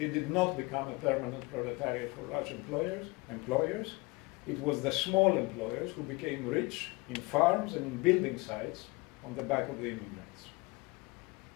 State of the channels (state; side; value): quieter; right; 25.6 dB